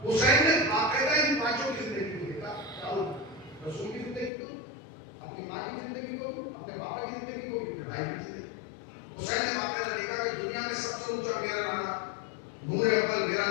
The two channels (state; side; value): drops out; right; at 4.3 s